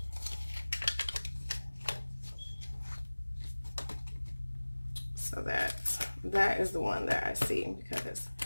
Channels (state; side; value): inverted; both; correlation -1.00